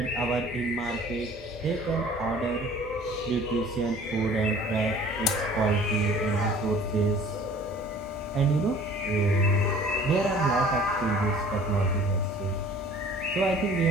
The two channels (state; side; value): normal; both; correlation 0.50